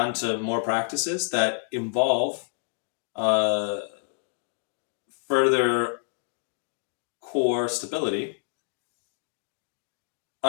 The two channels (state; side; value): silent; right; digital silence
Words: to more practices that involve further core stability,